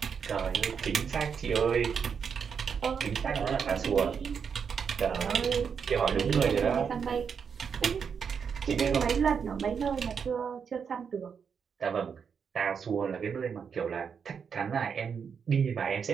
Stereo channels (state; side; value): quieter; left; 6.7 dB